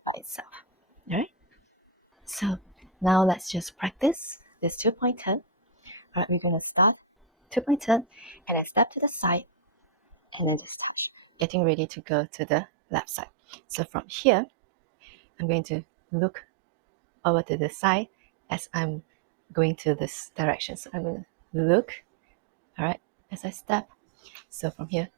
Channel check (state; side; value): drops out; left; at 11.5 s